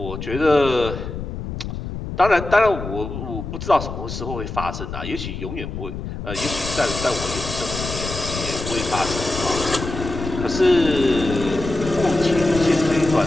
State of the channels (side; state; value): left; noise; rumble, 7 dB below the sound